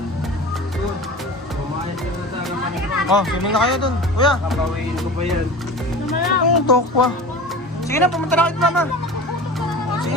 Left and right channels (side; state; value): both; normal; correlation 0.35